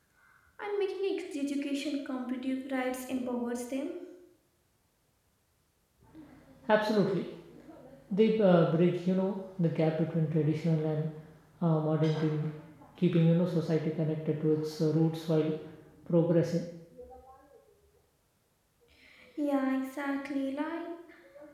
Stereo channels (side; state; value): both; identical; correlation 1.00